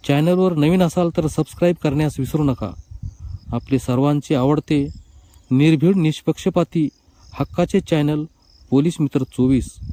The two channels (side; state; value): both; identical; correlation 1.00